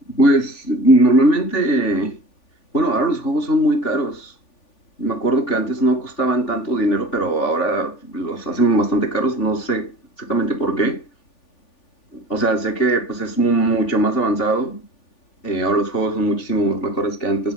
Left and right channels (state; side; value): late; right; 3.5 ms